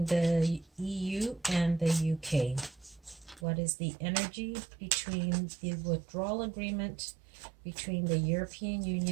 the EU and the UK? What is the energy between the withdrawal agreement between the European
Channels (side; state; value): left; drops out; at 3.5 s